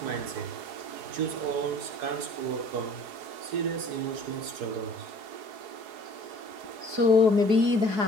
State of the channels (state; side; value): late; left; 4.7 ms